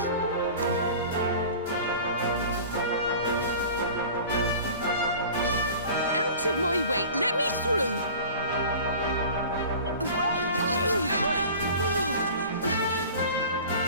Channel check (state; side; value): inverted; both; correlation -0.41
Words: Out of my way! Let me through!